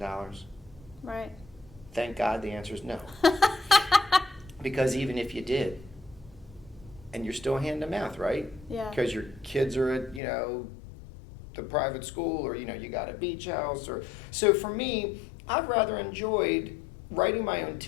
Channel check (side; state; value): right; drops out; at 10.2 s